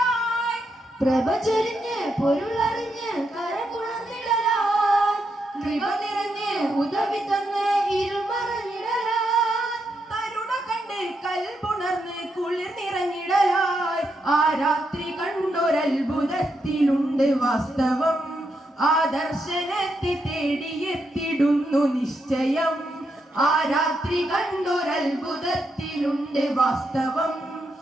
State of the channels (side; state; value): both; normal; correlation 0.82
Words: പ്രഭ ചൊരിഞ്ഞ് പൊരുളറിഞ്ഞ് കരപുണർന്നിടലായി, കൃപ നിറഞ്ഞ് ഉദവി തന്ന് ഇരുൾ മറഞ്ഞിടലായി. തരുണ കണ്ട് കൽപുണർന്ന് കുളിർ നിറഞ്ഞിടലായി. ആ രാത്രി കണ്ടൊരത്ഭുതത്തിലുണ്ട് വാസ്തവം, ആദർശനത്തെ തേടിയെത്തിടുന്നു നിശ്ചയം. ആ രാത്രി കണ്ടൊരത്ഭുതത്തിലുണ്ട് വാസ്തവം,